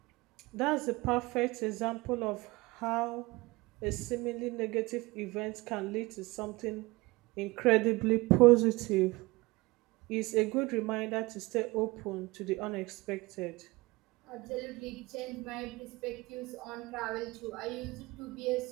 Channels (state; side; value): quieter; left; 22.4 dB